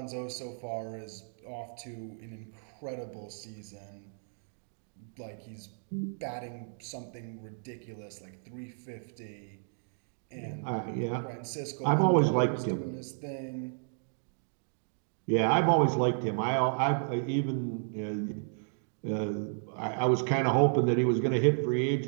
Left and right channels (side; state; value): left; silent; digital silence